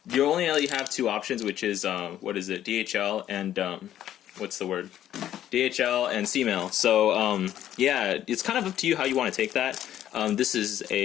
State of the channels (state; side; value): quieter; right; 11.6 dB